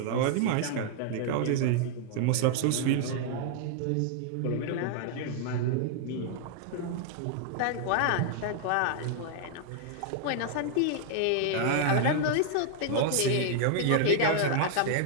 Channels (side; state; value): both; different; correlation 0.00